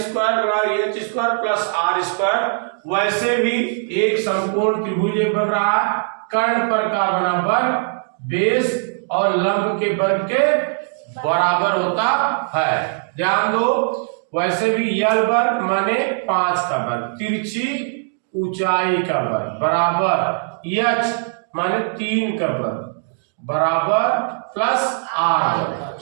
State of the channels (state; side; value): silent; left; digital silence